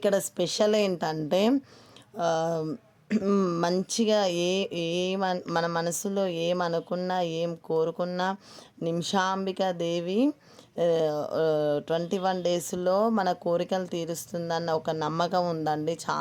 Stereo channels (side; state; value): both; identical; correlation 1.00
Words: స్పెషల్ ఏంటంటే మంచిగా మన మనసులో ఏమనుకున్నా, ఏం కోరుకున్నా నిమిషాంబిక దేవి 21 డేస్లో మన కోరికలు తీరుస్తుందన్న ఒక నమ్మకం ఉందండి.